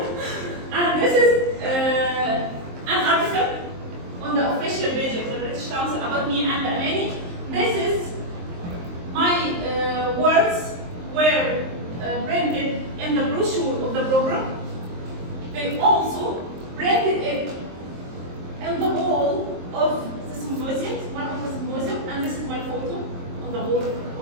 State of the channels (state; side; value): late; left; 23 ms